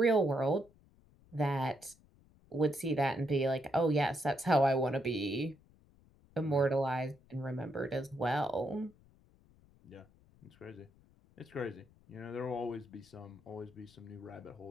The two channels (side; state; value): left; noise; rumble, 28 dB below the sound